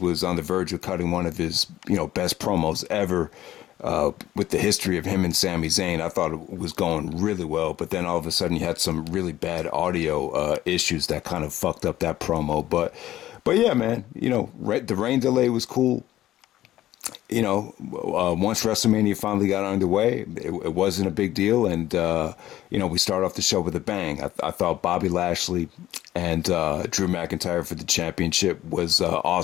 on the verge of cutting one of his, best promos ever. With the history of him and Sami Zayn, I thought it was going really well, but then all of a sudden you had some really bad audio issues that kind of fucked up that promo. But yeah, man, the rain delay was cool. Once WrestleMania finally got underway, it wasn't a big deal. And, we started off the show with a bang. I thought Bobby Lashley and Drew McIntyre for the championship was an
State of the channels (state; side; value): quieter; right; 14.0 dB